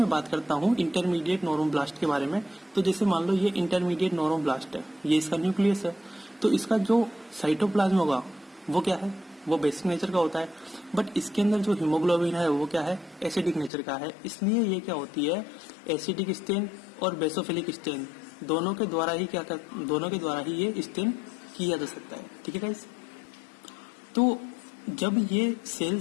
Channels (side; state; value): right; drops out; at 13.7 s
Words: बात करता हूँ इंटरमीडिएट नॉर्मोब्लास्ट के बारे में, तो जैसे मान लो ये इंटरमीडिएट नॉर्मोब्लास्ट है, ये इसका न्यूक्लियस है, तो इसका जो साइटोप्लाज्म होगा वो क्या है, वो बेसिक नेचर का होता है। बट इसके अंदर जो हीमोग्लोबिन है वो क्या है, एसिडिक नेचर का है, इसलिए ये क्या होती है एसिडिक स्टेन और बेसोफिलिक स्टेन दोनों के द्वारा ही ये स्टेन किया जा सकता है। ठीक है गाइस, तो जब ये